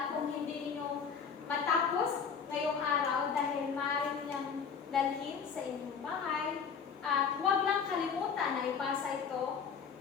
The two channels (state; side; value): quieter; right; 6.4 dB